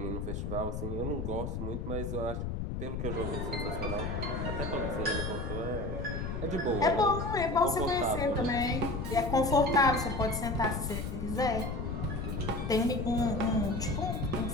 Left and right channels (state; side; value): noise; left; rumble, 3 dB below the sound